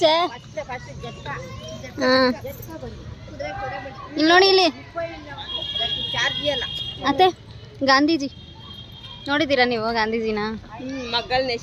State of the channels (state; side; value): identical; both; correlation 1.00